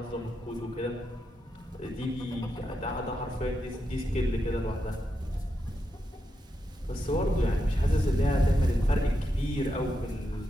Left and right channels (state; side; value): normal; both; correlation 0.85